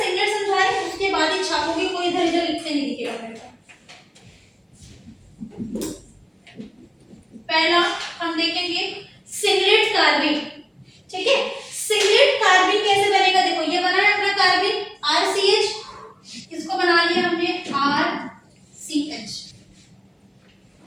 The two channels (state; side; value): identical; both; correlation 1.00